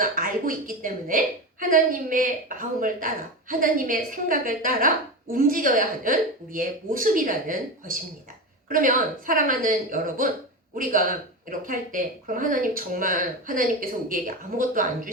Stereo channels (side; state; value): both; normal; correlation 0.21